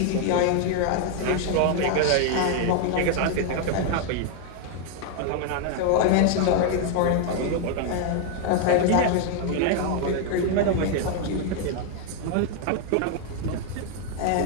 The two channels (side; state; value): both; different; correlation 0.00